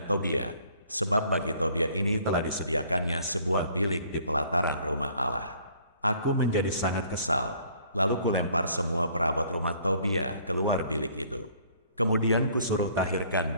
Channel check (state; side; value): inverted; both; correlation -0.58